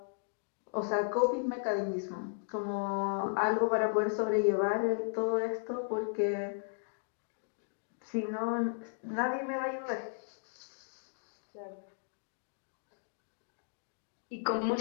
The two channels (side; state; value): right; silent; digital silence